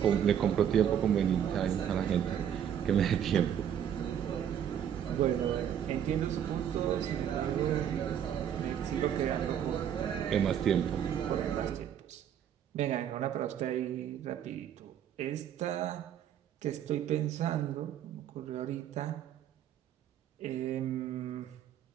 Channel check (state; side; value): quieter; left; 9.4 dB